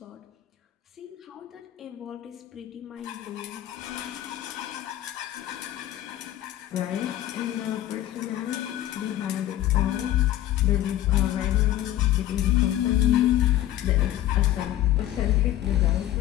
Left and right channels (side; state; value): right; quieter; 13.4 dB